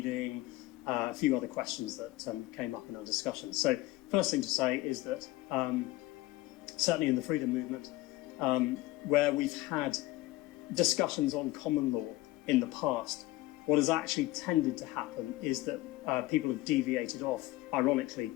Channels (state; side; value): quieter; right; 18.1 dB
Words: a few other questions that came up in our discussion. So first thing to say is that certainly in the freedom movement, where we've had discussions on common law in the past, what has actually tended to happen is that people have deviated off. Ironically,